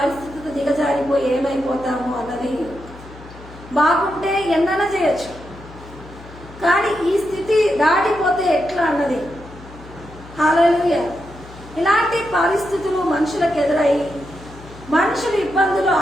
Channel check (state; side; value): noise; left; hum, 18 dB below the sound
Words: దిగజారిపోయి ఏమైపోతాము అన్నది. బాగుంటే ఎన్నైనా చేయొచ్చు, కానీ ఈ స్థితి దాటిపోతే ఎట్లా అన్నది. హల్లెలూయా. ఇలాంటి పరిస్థితులు మనుషులకు ఎదురై మనుషుల ఇబ్బందులు,